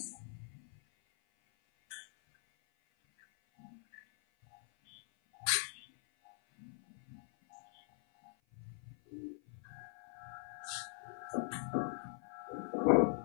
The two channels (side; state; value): right; silent; 51 dB below the other